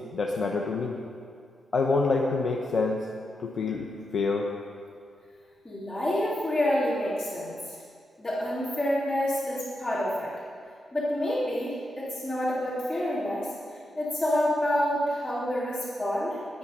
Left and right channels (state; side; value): normal; both; correlation 0.85